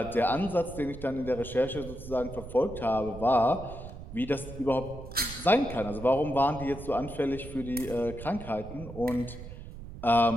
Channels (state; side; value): noise; right; rumble, 12 dB below the sound